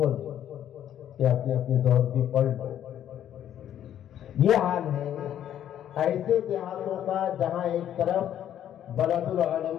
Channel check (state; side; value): quieter; right; 10.6 dB